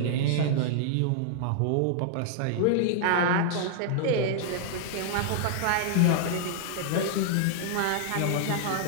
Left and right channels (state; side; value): different; both; correlation -0.01